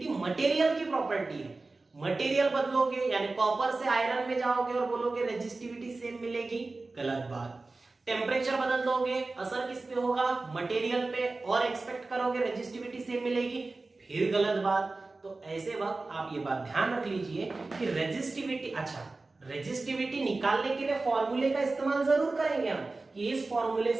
मटेरियल की प्रॉपर्टी है। मटेरियल बदलोगे यानी कॉपर से आयरन में जाओगे और बोलोगे रेजिस्टिविटी सेम मिलेगी, गलत बात। टेम्परेचर बदल दोगे, असर किस पे होगा? मटेरियल पे, और एक्सपेक्ट करोगे रेजिस्टिविटी सेम मिलेगी, फिर गलत बात। तो ऐसे वक्त आप ये बात ध्यान रख लीजिए कि रेजिस्टिविटी, अच्छा रेजिस्टिविटी निकालने के लिए फॉर्मूले का इस्तेमाल जरूर करेंगे हम, कि इस फॉर्मूले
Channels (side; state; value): left; quieter; 3.4 dB